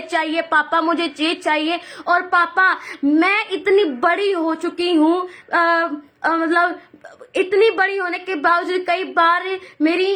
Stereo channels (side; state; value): both; identical; correlation 1.00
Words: चाहिए, पापा मुझे ये चाहिए, और पापा मैं इतनी बड़ी हो चुकी हूँ, मतलब इतनी बड़ी होने के बावजूद कई बार मेरी